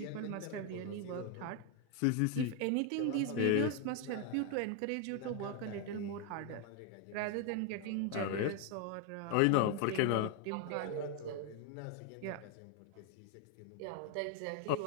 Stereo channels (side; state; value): both; different; correlation 0.01